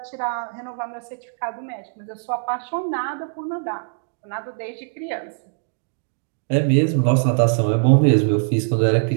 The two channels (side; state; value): left; silent; digital silence